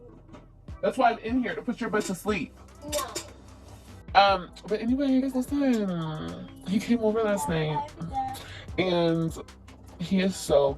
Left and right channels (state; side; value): identical; both; correlation 1.00